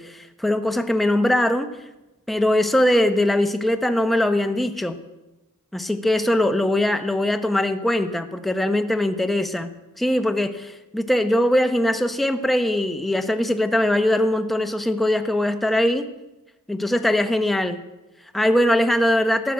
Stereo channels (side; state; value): both; normal; correlation 0.90